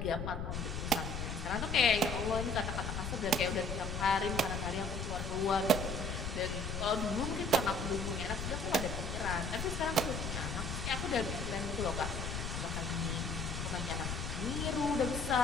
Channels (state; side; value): noise; left; rumble, 4 dB below the sound